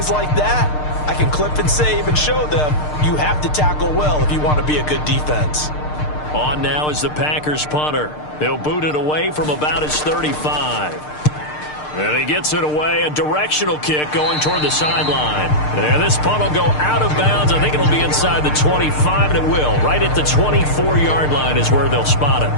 like that, I can clip and save and show them you have to tackle well if you want to be a good defense. On now is the Packers punter. He'll boot it away from about his 35. And he gets it away, a directional kick going toward the sideline. And this punt will go out of bounds. I think it'll be inside the 25, and it will. Right at the 24-yard line is where they'll spot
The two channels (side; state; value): right; late; 6.6 ms